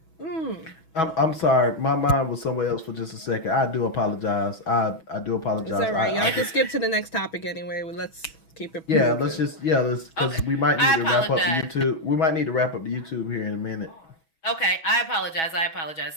I'm sorry. My mind was somewhere else for just a second. I do apologize. I do apologize. It's all right. Y'all can skip to the next topic anyway. Well, let's keep it. Yeah, let's because we might need to wrap up the YouTube. We might need to wrap up the YouTube here in a minute. Okay, I apologize.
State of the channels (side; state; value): right; late; 6.2 ms